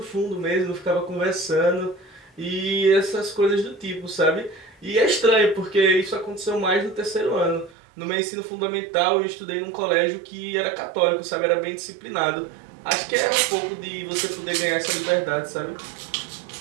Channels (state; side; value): drops out; left; at 7.8 s